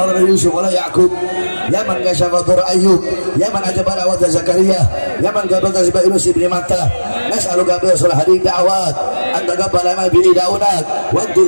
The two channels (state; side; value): inverted; both; correlation -1.00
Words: من يوسف ولا يعقوب يا من كشف ضر أيوب يا من أجاب دعوة زكريا يا من قبل تسبح يونس بن متى نسألك بأصل هذه الدعوات أن تقبل ما به دعوناك وأن